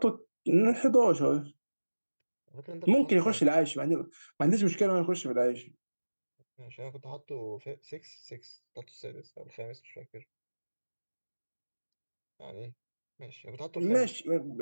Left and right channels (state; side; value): inverted; both; correlation -1.00